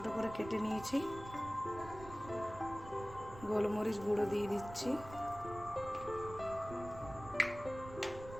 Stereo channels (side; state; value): right; noise; rumble, 14 dB below the sound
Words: করে কেটে নিয়েছি। গোলমরিচ গুঁড়ো দিয়ে দিচ্ছি,